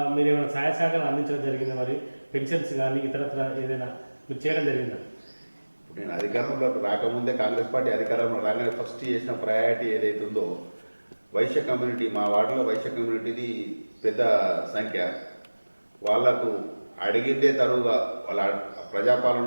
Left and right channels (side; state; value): both; inverted; correlation -1.00